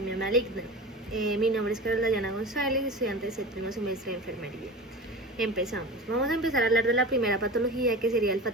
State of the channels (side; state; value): both; normal; correlation 0.31